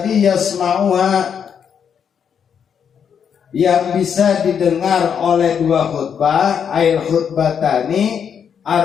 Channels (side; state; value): right; quieter; 7.6 dB